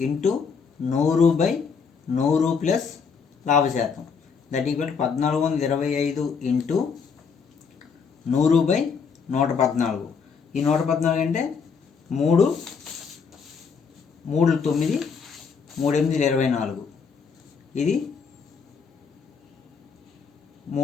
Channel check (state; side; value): quieter; right; 5.8 dB